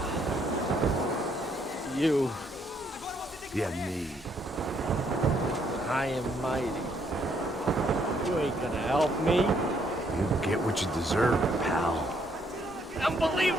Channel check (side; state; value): both; normal; correlation 0.70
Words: You. Yeah, me. I am mighty. You ain't gonna help me. You get what you deserve, pal.